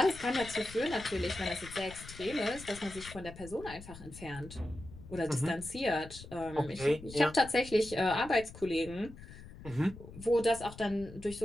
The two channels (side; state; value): left; noise; rumble, 15 dB below the sound